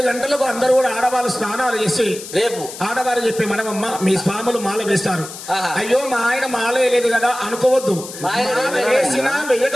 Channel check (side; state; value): left; noise; hiss, 12 dB below the sound